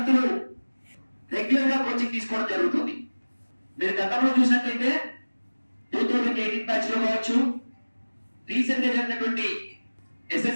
రెగ్యులర్ గా కోచింగ్ తీసుకోవడం జరుగుతుంది. మీరు గతంలో చూసినట్లయితే 2018 బ్యాచ్ లో కావచ్చు, రీసెంట్ గా జరిగినటువంటి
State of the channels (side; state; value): both; inverted; correlation -1.00